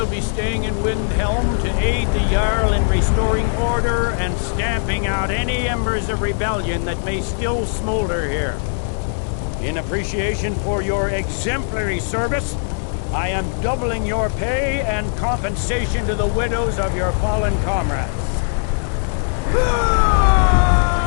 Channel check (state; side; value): silent; right; digital silence